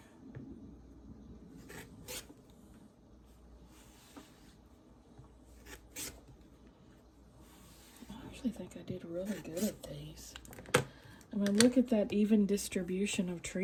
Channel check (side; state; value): both; identical; correlation 1.00